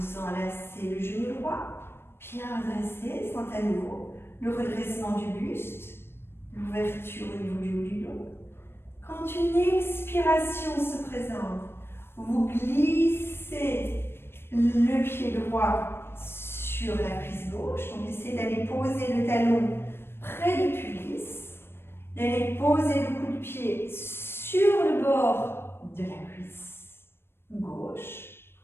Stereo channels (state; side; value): late; right; 0.11 ms